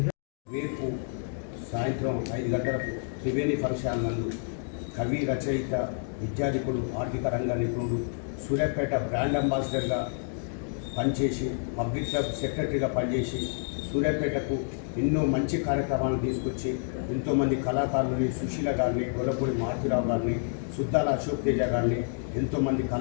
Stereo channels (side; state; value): right; silent; digital silence